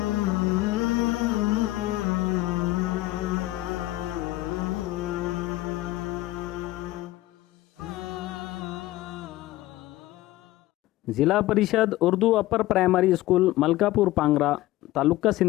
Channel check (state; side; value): quieter; right; 16.9 dB